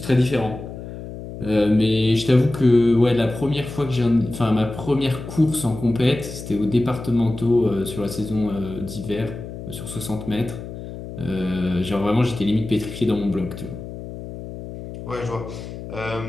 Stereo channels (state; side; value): noise; left; hum, 11 dB below the sound